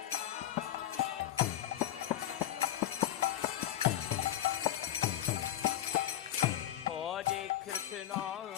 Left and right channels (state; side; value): quieter; right; 12.4 dB